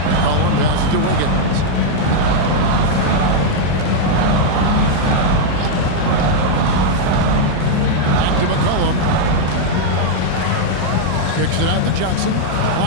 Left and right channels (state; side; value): different; both; correlation -0.01